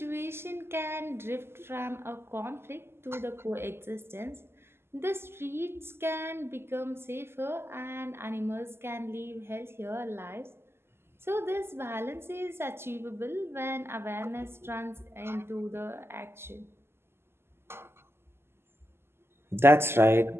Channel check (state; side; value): late; left; 0.12 ms